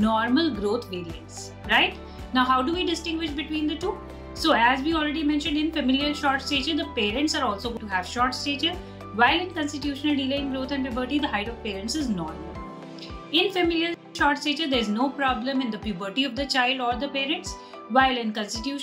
growth variants, right? Now, how do we distinguish between the two? So as we already mentioned, in familial short stature, the parents are also going to have short stature, while in constitutional delay in growth and puberty, the height of parents is normal. In familial short stature, there is no problem in the puberty of the child or the parents, while in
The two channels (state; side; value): identical; both; correlation 1.00